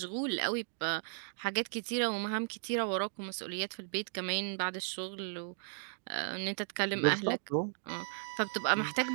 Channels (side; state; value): left; silent; digital silence